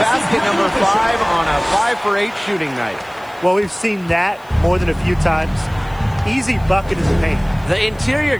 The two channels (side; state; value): left; noise; hiss, 28 dB below the sound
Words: number 5 on a 5 for 8 shooting night. Well, we've seen that more than a few times. Easy bucket in the paint. The interior